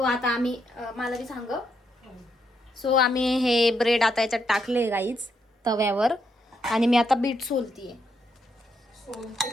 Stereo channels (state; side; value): normal; both; correlation 0.78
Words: आता आम्ही मला बी सांग. सो आम्ही हे ब्रेड आता याच्यात टाकले गाईज तव्यावर, आणि मी आता बीट सोलतीये.